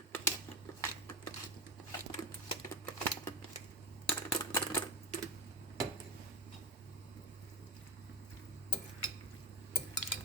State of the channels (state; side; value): normal; both; correlation 0.18